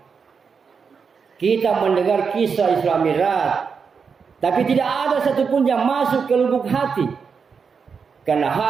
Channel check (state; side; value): quieter; left; 5.8 dB